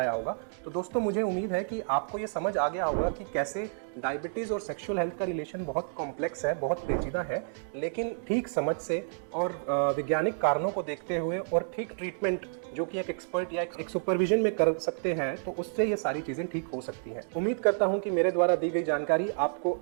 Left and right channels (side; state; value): left; silent; digital silence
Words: होगा। तो दोस्तों, मुझे उम्मीद है कि आपको ये समझ आ गया होगा कि कैसे डायबिटीज़ और सेक्सुअल हेल्थ का रिलेशन बहुत कॉम्प्लेक्स है, बहुत पेचीदा है, लेकिन ठीक समझ से और वैज्ञानिक कारणों को देखते हुए और ठीक ट्रीटमेंट जो कि एक एक्सपर्ट या एक सुपरविजन में कर सकते हैं, तो उससे ये सारी चीज़ें ठीक हो सकती हैं। उम्मीद करता हूँ कि मेरे द्वारा दी गई जानकारी आपको